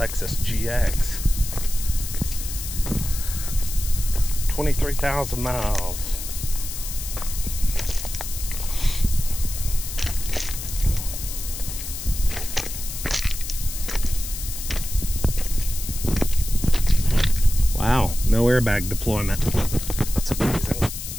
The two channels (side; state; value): left; noise; hiss, 8 dB below the sound